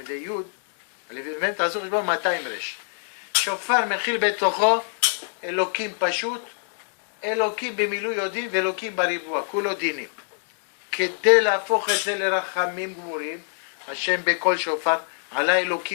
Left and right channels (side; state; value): right; silent; 62 dB below the other